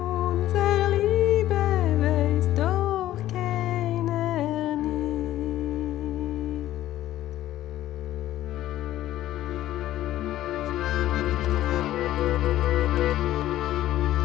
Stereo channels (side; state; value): right; quieter; 13.9 dB